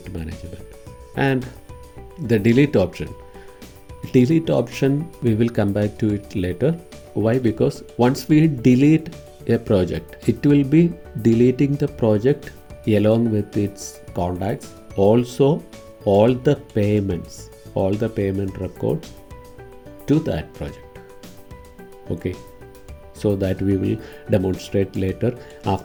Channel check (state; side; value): identical; both; correlation 1.00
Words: management. And the delete option. Delete option, we will come back to it later. Why? Because once we delete a project, it will be deleting the project along with its contacts, also all the payments, all the payment records to that project. Okay, so that we will demonstrate later